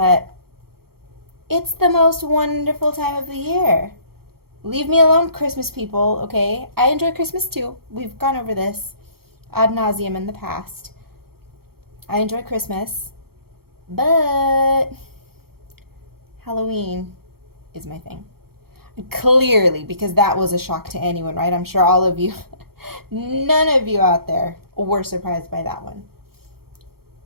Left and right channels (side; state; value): left; late; 0.94 ms